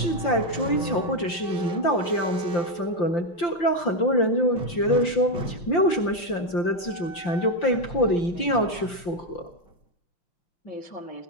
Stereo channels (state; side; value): late; right; 5.8 ms